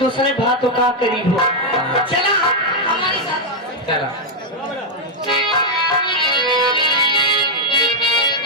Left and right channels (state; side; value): normal; both; correlation 0.00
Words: बातों का करीब हो। चला हमारे साथ। चलो।